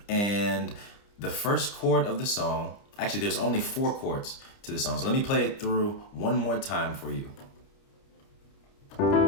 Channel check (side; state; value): right; late; 30 ms